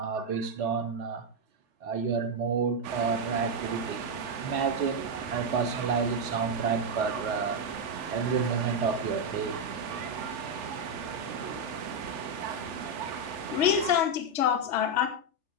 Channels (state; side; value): late; left; 3.4 ms